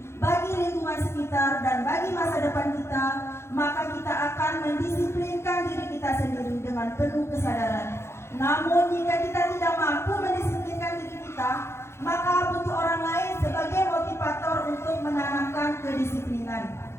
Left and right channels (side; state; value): right; late; 0.13 ms